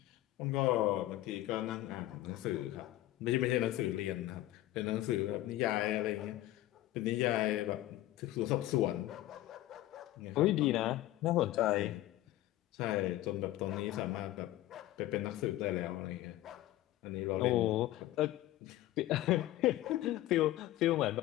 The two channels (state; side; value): quieter; right; 15.5 dB